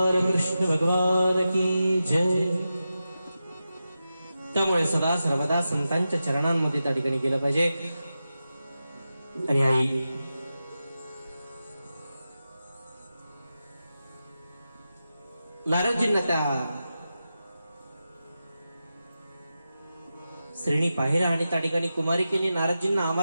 कृष्ण भगवान की जय. त्यामुळे सदा सर्वदा संतांच्या चरणांमध्ये त्या ठिकाणी गेलं पाहिजे. आणि आई नारदजींना त्या श्रेणी पाहिला आणि त्या ठिकाणी कुमारिकेने नारदजींना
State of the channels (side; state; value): both; inverted; correlation -0.92